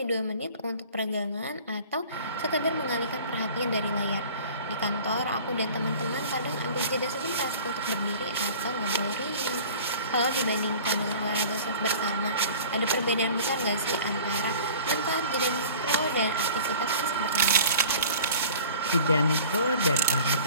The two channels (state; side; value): inverted; both; correlation -0.45